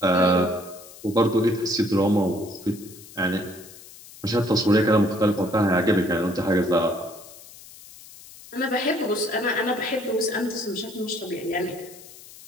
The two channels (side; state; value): left; noise; hiss, 19 dB below the sound